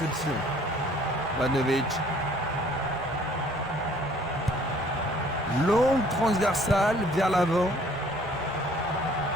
Ivanovic. Longue transversale vers l'avant.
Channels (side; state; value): both; normal; correlation 0.57